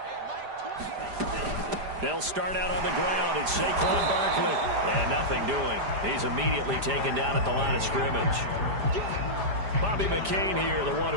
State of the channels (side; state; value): left; late; 5.0 ms